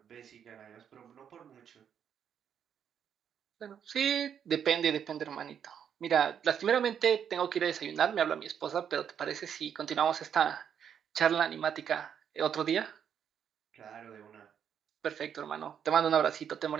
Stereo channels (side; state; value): left; quieter; 8.3 dB